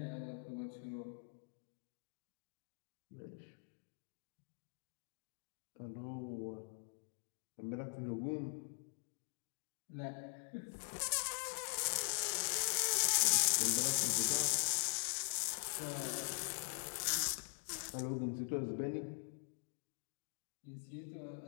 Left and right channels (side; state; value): right; silent; digital silence